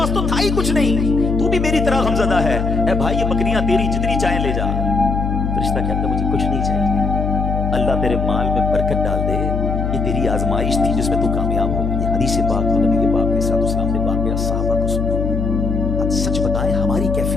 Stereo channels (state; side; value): noise; left; hum, 1 dB below the sound